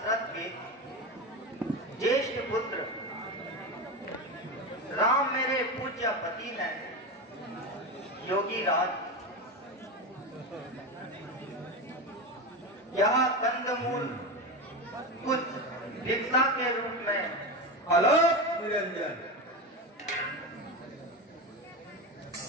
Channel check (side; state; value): both; normal; correlation 0.19